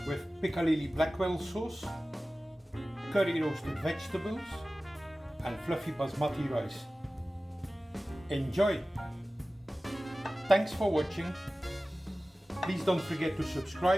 with piccalilli Blackwell sauce, curry roasted vegetables, and fluffy basmati rice. Enjoy! Thanks for watching. Please don't forget to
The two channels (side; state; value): both; normal; correlation 0.96